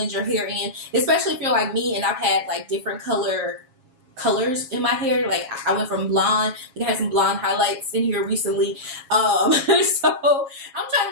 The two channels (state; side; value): late; left; 7.4 ms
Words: your hair in, especially if you're like me and I've had like different color colors in my hair. Like I went from blonde, like I had some blonde highlights in here recently, so I'm trying